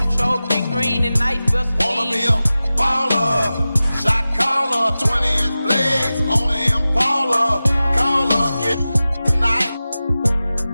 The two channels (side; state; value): both; inverted; correlation -0.96